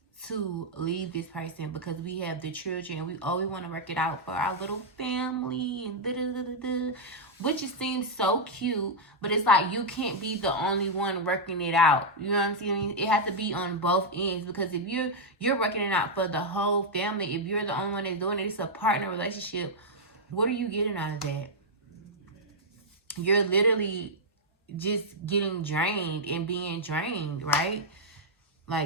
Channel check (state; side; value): normal; both; correlation -0.05